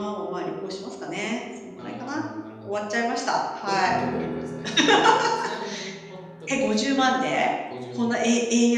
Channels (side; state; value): both; identical; correlation 1.00